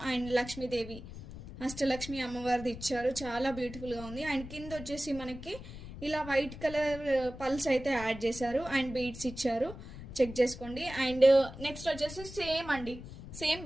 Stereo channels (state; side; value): noise; left; rumble, 13 dB below the sound